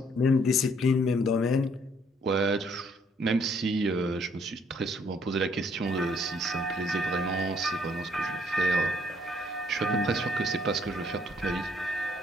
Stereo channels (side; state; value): both; normal; correlation 0.66